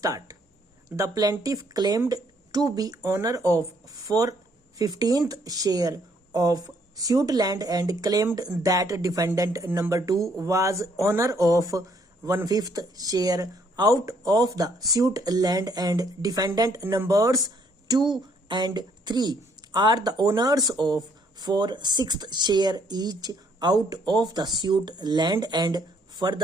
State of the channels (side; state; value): both; normal; correlation 0.67